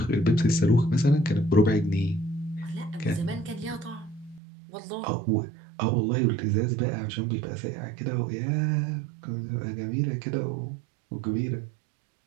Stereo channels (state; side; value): drops out; left; at 4.4 s